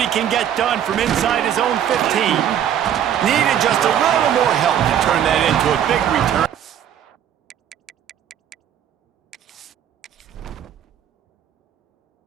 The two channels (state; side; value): quieter; left; 9.8 dB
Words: can get done from inside his own 15. Needed just a little more help to turn that into a big return.